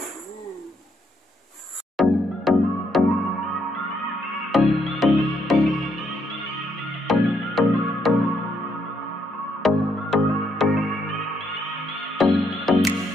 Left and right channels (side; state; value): both; normal; correlation 0.74